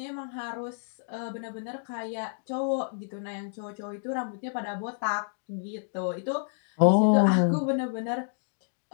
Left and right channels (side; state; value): right; silent; digital silence